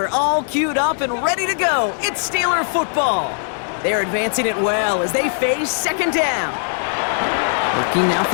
all queued up and ready to go. It's Steeler football. They're advancing it well as they face second down. Looking now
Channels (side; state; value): right; silent; digital silence